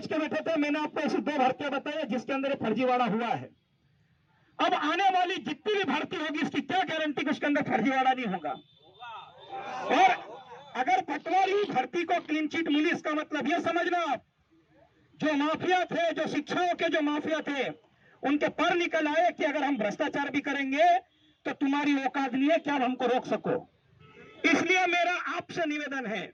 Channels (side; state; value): both; identical; correlation 1.00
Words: के बैठे थे, मैंने आपको ऐसी 2 भर्तियां बताई जिसके अंदर फर्जीवाड़ा हुआ है। अब आने वाली जितनी भी भर्ती होगी इसकी क्या गारंटी कि उसके अंदर फर्जीवाड़ा नहीं होगा। और अगर पटवारी भर्ती को क्लीन चिट मिली, इसका मतलब यह समझना आप, जो माफिया थे, जो शिक्षाओं के जो माफिया थे, उनके पर निकल आए कि अगर हम भ्रष्टाचार भी करेंगे तो तुम्हारी औकात नहीं है कि आप हमको रोक सको। इसलिए मेरा आपसे निवेदन है,